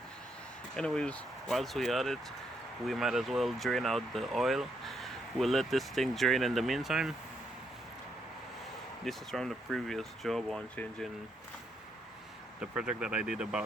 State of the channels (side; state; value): both; normal; correlation 0.76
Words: Anyways, whilst we at it, we might as well drain out the oil. We'll let this thing drain in the meantime. This is from the previous job on changing the project that I did